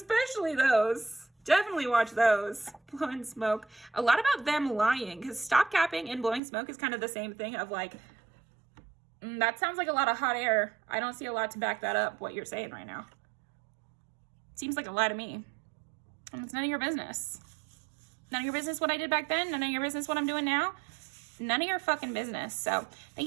those. Definitely watch those. Blowing smoke. A lot about them lying. Because stop capping and blowing smoke is kind of the same thing of like, that sounds like a lot of hot air. I don't see a lot to back that up, what you're saying right now. Seems like a lie to me. And it's none of your business. None of your business what I did back then. None of your business what I'm doing now. None of your fucking business. So thank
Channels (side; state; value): left; drops out; at 6.4 s